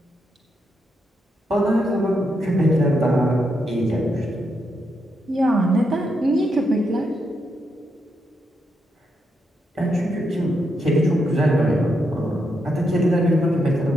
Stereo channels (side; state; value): both; normal; correlation 0.81